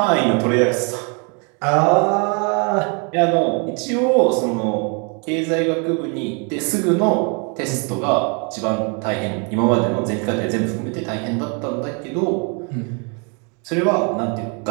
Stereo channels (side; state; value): left; quieter; 35.2 dB